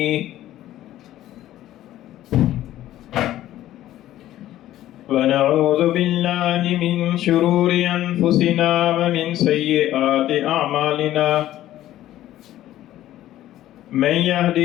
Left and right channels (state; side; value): quieter; right; 13.6 dB